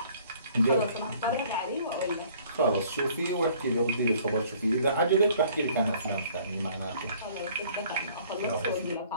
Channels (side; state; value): both; inverted; correlation -0.56